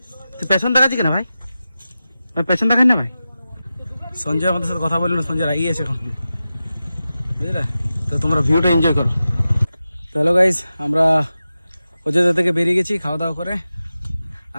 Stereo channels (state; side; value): inverted; both; correlation -0.93